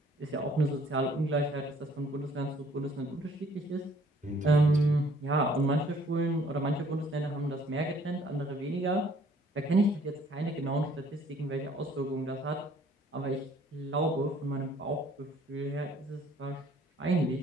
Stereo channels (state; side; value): normal; both; correlation 0.59